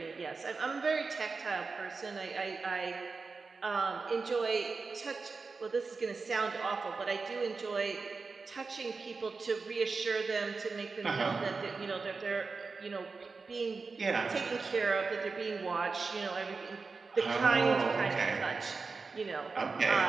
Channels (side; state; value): left; quieter; 4.4 dB